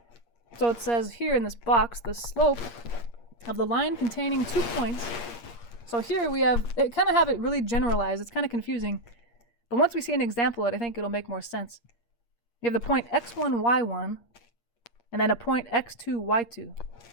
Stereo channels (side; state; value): right; late; 8.5 ms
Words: So it says here in this box, the slope of the line containing 2 points. So here we have, it kind of have it really generalized. It's kind of confusing. But once we see an example of it, I think it'll make more sense. You have the point x1, y1, and then a point x2, y2.